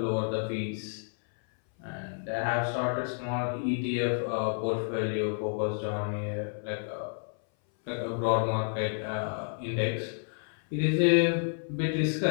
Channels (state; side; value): silent; right; 58 dB below the other